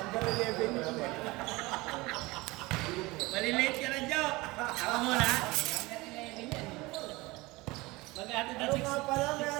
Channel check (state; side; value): quieter; left; 22.1 dB